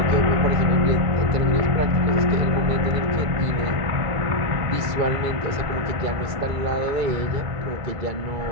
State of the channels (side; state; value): left; late; 2.3 ms